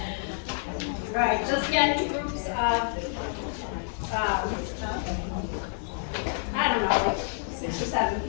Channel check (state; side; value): silent; right; digital silence